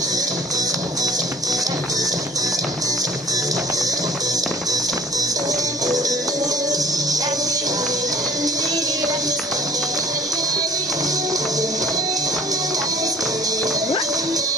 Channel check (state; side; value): normal; both; correlation 0.50